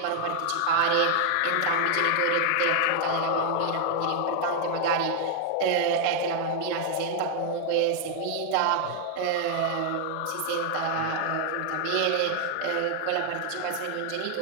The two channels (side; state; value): both; different; correlation 0.00